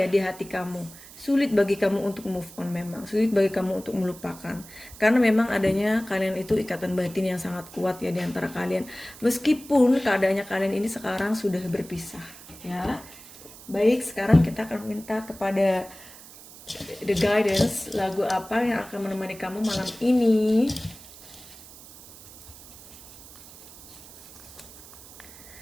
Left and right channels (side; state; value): right; noise; hiss, 18 dB below the sound